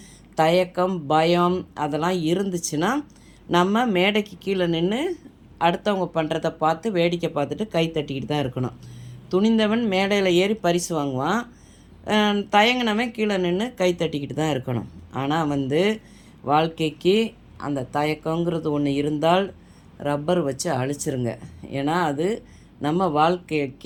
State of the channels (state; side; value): identical; both; correlation 1.00